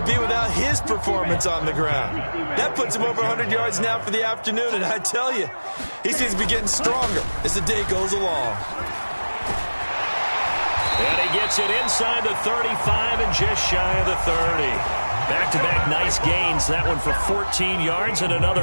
be without his performance on the ground? That puts him over 100 yards now for the afternoon, and I tell you, he seems to be getting stronger as the day goes along. And he gets it inside the 35 and just shy of the 30. Back-to-back nice gains. That one for 14 yards and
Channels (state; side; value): inverted; both; correlation -1.00